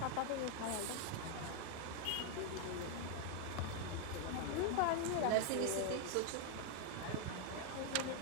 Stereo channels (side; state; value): both; different; correlation 0.00